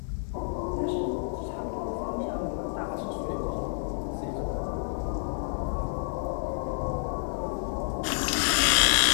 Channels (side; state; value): right; silent; digital silence